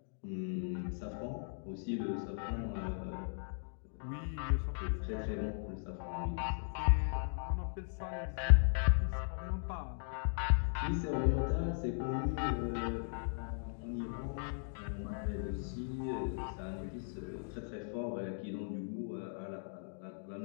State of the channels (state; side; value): silent; right; digital silence